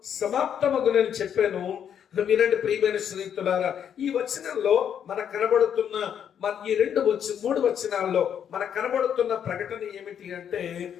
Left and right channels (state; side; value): quieter; right; 8.7 dB